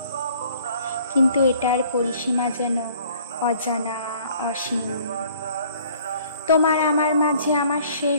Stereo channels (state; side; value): inverted; both; correlation -0.56